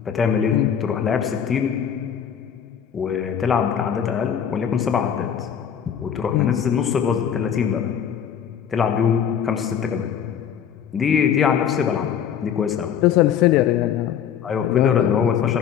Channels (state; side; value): quieter; right; 8.4 dB